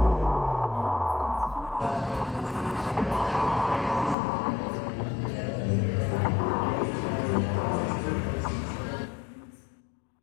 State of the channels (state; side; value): drops out; right; at 4.2 s